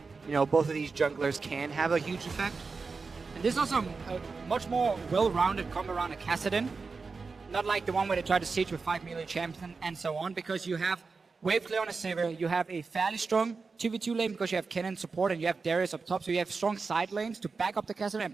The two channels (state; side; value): quieter; left; 4.5 dB